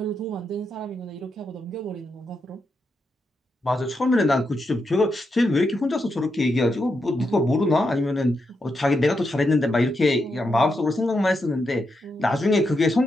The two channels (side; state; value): both; normal; correlation 0.84